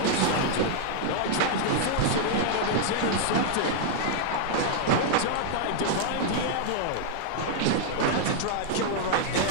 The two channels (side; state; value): both; different; correlation -0.01